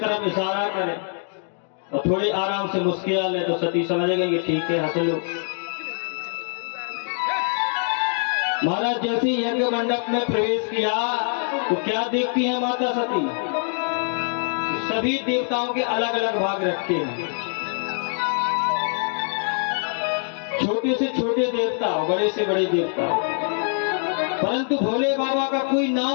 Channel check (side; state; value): right; silent; 56 dB below the other